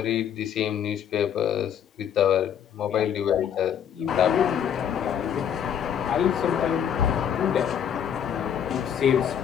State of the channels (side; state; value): right; quieter; 8.9 dB